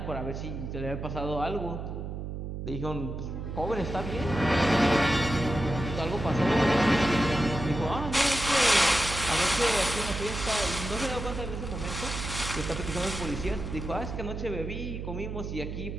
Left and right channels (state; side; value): noise; right; hum, 6 dB below the sound